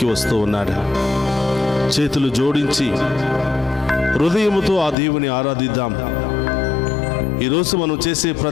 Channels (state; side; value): drops out; right; at 5.0 s